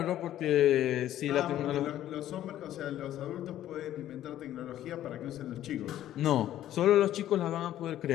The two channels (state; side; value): quieter; right; 12.5 dB